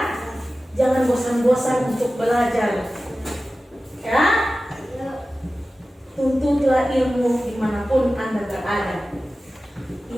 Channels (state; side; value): normal; both; correlation 0.95